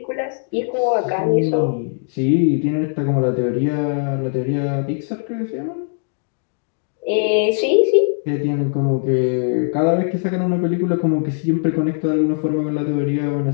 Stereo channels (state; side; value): silent; right; digital silence